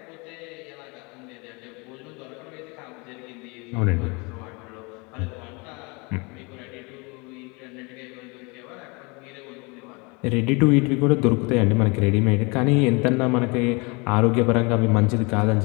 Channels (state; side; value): quieter; right; 29.0 dB